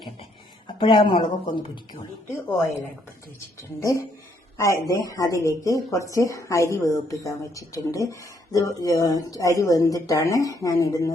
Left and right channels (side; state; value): both; normal; correlation 0.71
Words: അപ്പോഴാ മുളകൊക്കെ ഒന്ന് പിടിക്കുള്ളിട്ട്. ഓയിൽ അടുപ്പത്ത് വെച്ചിട്ടുണ്ട്. അതിലേക്ക് കുറച്ച് അരി വേവിപ്പിക്കാൻ വെച്ചിട്ടുണ്ട്. ഇത് അരി വെന്തിട്ടാണ് ഞാൻ